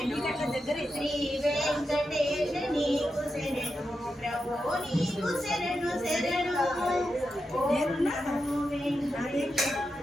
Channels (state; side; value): normal; both; correlation 0.88